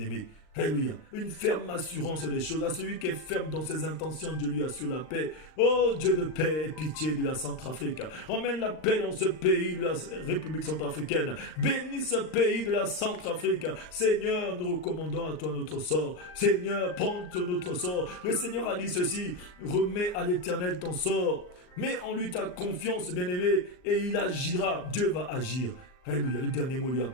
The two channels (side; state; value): right; late; 39 ms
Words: aimés. Alléluia. Une ferme assurance des choses. À celui qui est ferme dans ses intentions, Dieu lui assure la paix. Oh Dieu de paix et pitié de la Centrafrique. Emmène la paix dans ce pays de la République centrafricaine. Bénis ce pays de la Centrafrique. Seigneur, nous recommandons à toi notre sort. Seigneur, prends notre sort. Le Seigneur a dit ceci: remets à l'Éternel ton sort. Mets en lui ta confiance, bien-aimé, et il agira. Dieu va agir. Alléluia. Le dernier mot lui